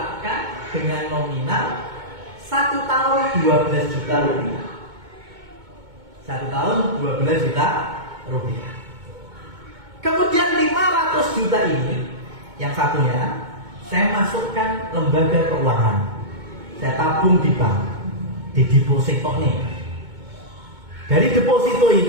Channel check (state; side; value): late; left; 2.2 ms